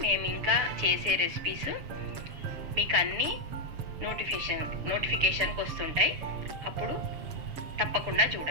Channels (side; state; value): left; late; 7.3 ms